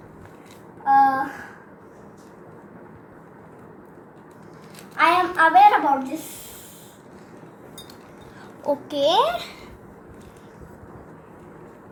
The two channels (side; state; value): both; identical; correlation 1.00